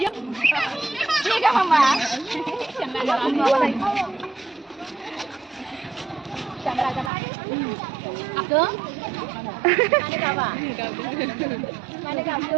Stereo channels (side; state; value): left; drops out; at 7.1 s